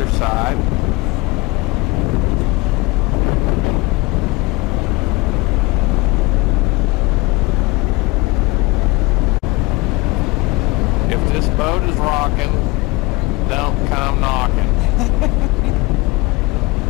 side. If this boat is rocking, don't come knocking.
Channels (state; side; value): quieter; right; 22.1 dB